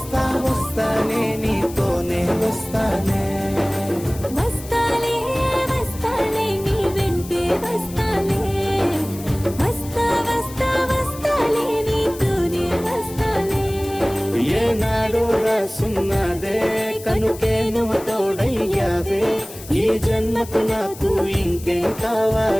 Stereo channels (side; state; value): left; noise; hiss, 16 dB below the sound